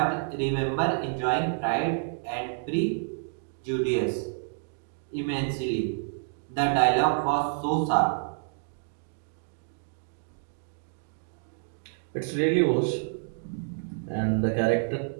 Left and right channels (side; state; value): left; silent; digital silence